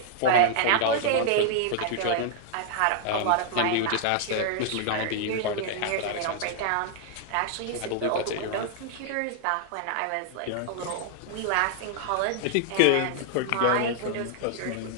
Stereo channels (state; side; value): different; both; correlation -0.01